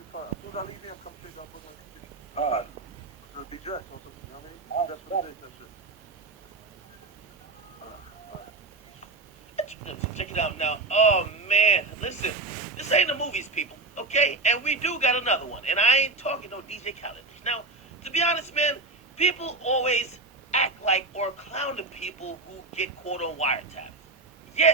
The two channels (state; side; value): quieter; left; 3.4 dB